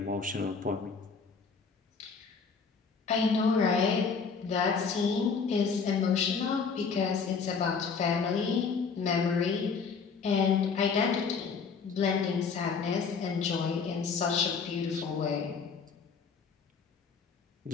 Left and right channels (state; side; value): quieter; right; 5.5 dB